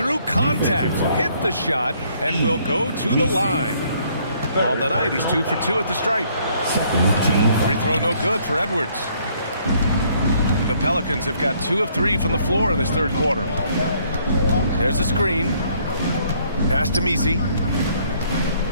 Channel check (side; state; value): both; inverted; correlation -0.65